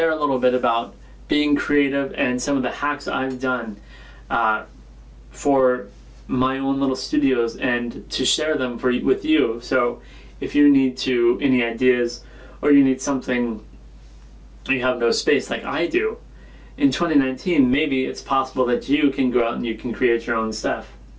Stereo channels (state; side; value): identical; both; correlation 1.00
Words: a little bit about being creative and some of the hacks I've done for my own little studios, and to share them with you. So if you need any ideas, or you need something, you have no space like I do, in 2019 maybe it's possible that you can go out and you can create your own stuff.